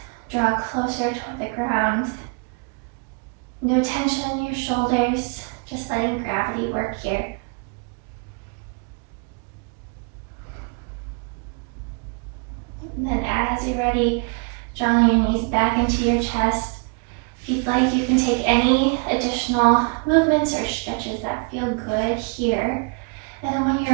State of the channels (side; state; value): left; quieter; 34.7 dB